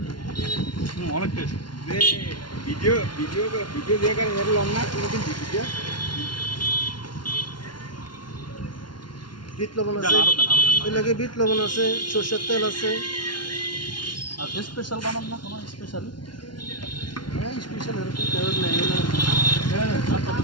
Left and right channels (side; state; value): right; late; 0.71 ms